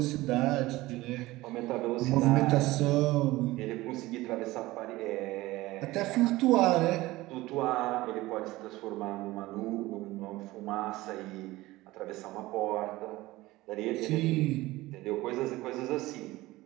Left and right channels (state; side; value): quieter; left; 18.7 dB